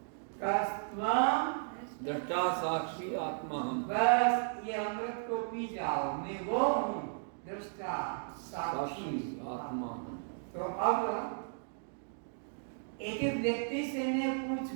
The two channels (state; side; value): silent; left; digital silence